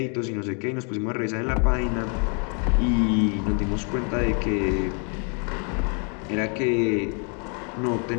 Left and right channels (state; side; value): quieter; right; 38.9 dB